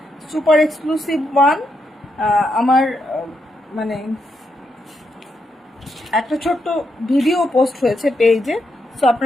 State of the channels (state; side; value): normal; both; correlation 0.81